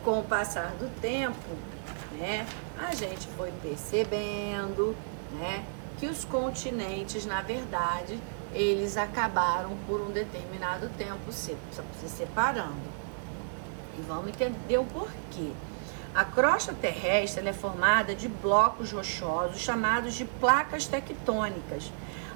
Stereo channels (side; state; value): left; silent; 57 dB below the other